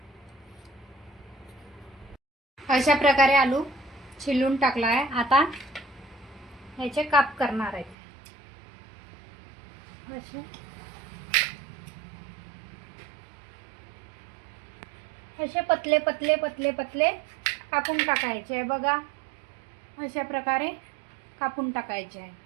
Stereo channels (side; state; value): left; drops out; at 8.0 s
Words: अशा प्रकारे आलू छिलून टाकला आहे. आता याचे काप करणार आहे. असे पतले कापून टाकायचे आहे बघा. अशा प्रकारे कापून टाकायचे आहे.